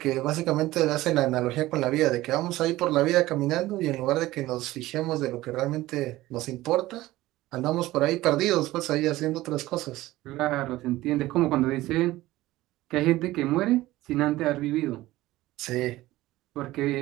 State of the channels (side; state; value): left; quieter; 17.2 dB